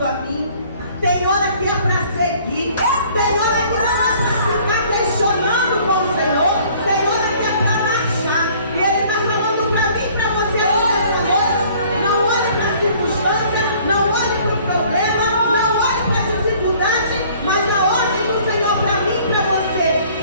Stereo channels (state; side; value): inverted; both; correlation -0.55